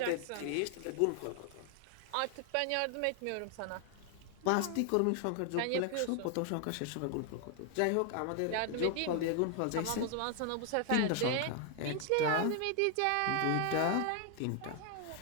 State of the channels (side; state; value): both; different; correlation 0.00